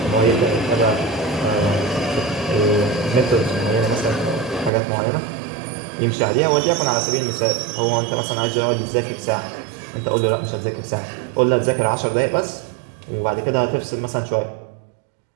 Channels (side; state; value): left; drops out; at 4.7 s